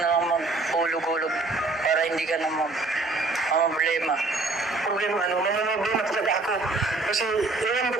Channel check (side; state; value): left; quieter; 3.3 dB